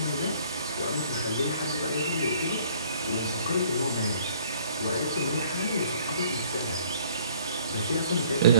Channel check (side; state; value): both; inverted; correlation -0.57